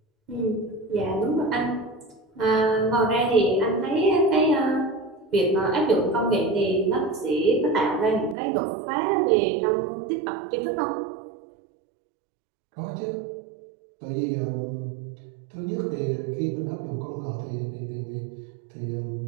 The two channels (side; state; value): left; drops out; at 8.3 s